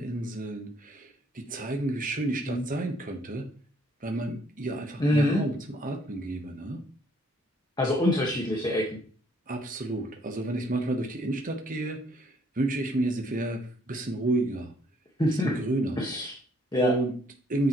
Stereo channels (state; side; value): normal; both; correlation 0.65